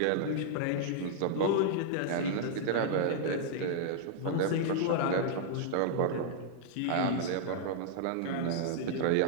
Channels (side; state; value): both; different; correlation -0.01